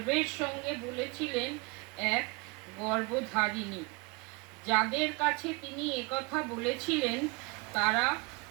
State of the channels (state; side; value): quieter; left; 28.4 dB